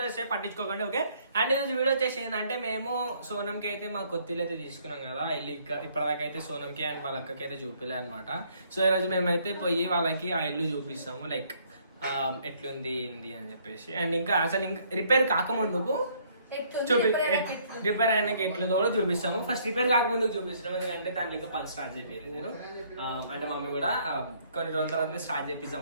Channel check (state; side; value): inverted; both; correlation -0.64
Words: చేస్తే పట్టించుకోకండి ఓకే. అండ్ ఈరోజు వీడియో వచ్చేసి ఏంటంటే మేము సోనంకి అయితే మా కొత్తిల్లు అయితే తీసుకున్నాం కదా ఇల్లు. ఇప్పటిదాకా అయితే సోనంకి అండ్ వాళ్ళ అక్కకి అయితే చూపిలే అనమాట. సో ఈరోజు మేమైతే పోయి వాళ్ళకి ఆ ఇల్లు చూపిస్తాము లైక్ ఎట్లుంది ఏంది అని చెప్పేసి. అండ్ ఇంకా అసలు ఇంకా రిపేర్ కాకముందుకు రిపేర్ అయినాక ఎట్లుందో కూడా చూపిస్తాము. ఫస్ట్ రిపేర్ కాకముందుకు చూపిస్తున్నాం ఎందుకంటే దాంట్లో ఇంకా పని స్టార్ట్ చేయాలి నేను. అంటే మమ్మీ కూడా కొన్ని రోజుల తర్వాత స్టార్ట్